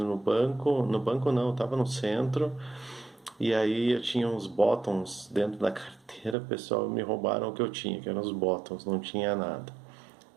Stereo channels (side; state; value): left; drops out; at 6.4 s